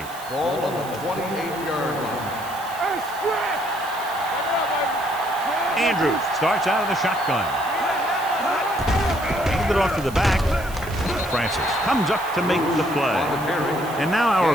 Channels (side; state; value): right; noise; hiss, 17 dB below the sound